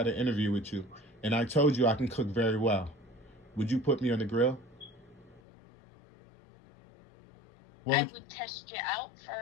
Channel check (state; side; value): drops out; right; at 5.4 s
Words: an interview with you, and I told you I can cook very well, would you put me on the grill? What I would, would test you out